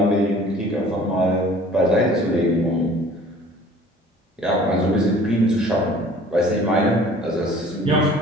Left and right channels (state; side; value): normal; both; correlation 0.50